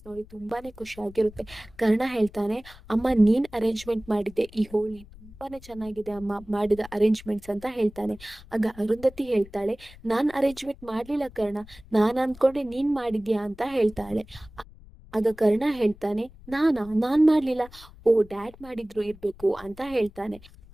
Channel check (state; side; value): noise; left; rumble, 21 dB below the sound